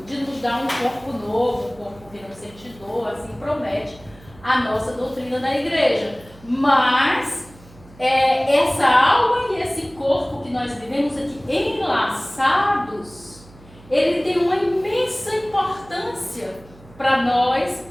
de nos dar um corpo novo, um corpo que não sente dor, assim promete a nossa doutrina da igreja. Mas essa alma e esse corpo que nós vivemos aqui enlaçados, ele tem uma imensa importância para nós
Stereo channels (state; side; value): noise; right; hum, 23 dB below the sound